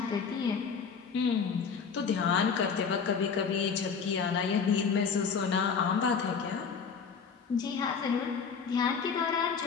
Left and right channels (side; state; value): right; quieter; 6.0 dB